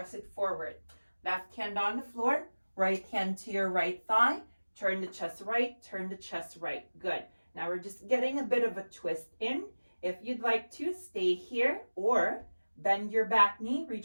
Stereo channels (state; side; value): inverted; both; correlation -1.00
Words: it forward. Left hand on the floor, right hand to your right thigh. Turn the chest right, turn the chest right. Good. Now we're just getting a bit of a twist in. If you'd like to, stay here or bend your back knee,